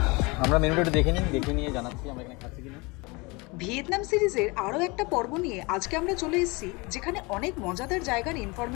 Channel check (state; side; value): quieter; right; 26.3 dB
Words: আমরা মেনুটা একটু দেখে নিয়ে জানাচ্ছি আমরা এখানে খাচ্ছি কিনা। ভিয়েতনাম সিরিজের আরো একটা পর্ব নিয়ে আজকে আমরা চলে এসেছি, যেখানে অনেক মজাদার জায়গার